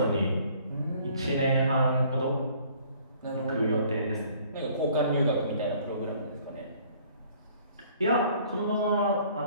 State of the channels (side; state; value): both; inverted; correlation -0.57